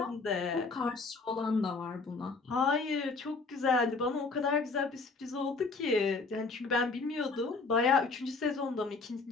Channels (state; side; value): quieter; right; 4.0 dB